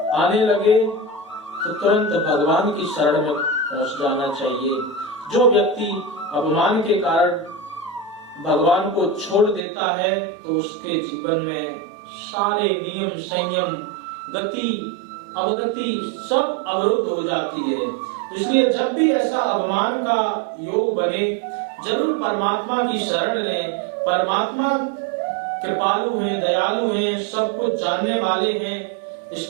आने लगे तो तुरंत भगवान की शरण में पहुंच जाना चाहिए। जो व्यक्ति अवमान के कारण भगवान को छोड़ देता है तो उसके जीवन में सारे नियम, संयम, गति, अवगति सब अवरुद्ध हो जाती है। इसलिए जब भी ऐसा अवमान का योग बने, जरूर परमात्मा की शरण लें। परमात्मा कृपालु हैं, दयालु हैं, सब कुछ जानने वाले हैं। इस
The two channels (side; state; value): left; drops out; at 9.6 s